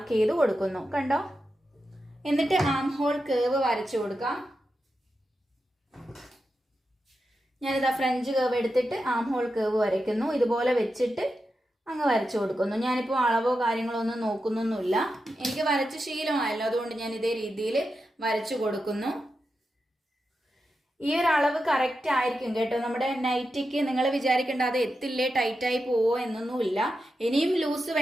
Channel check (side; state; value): both; normal; correlation 0.89